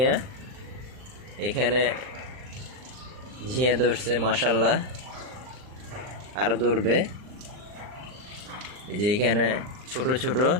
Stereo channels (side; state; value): left; late; 39 ms